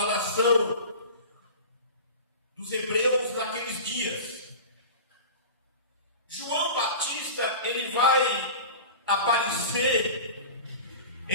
nação dos hebreus naqueles dias. João Batista, ele vai aparecer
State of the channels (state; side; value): inverted; both; correlation -0.34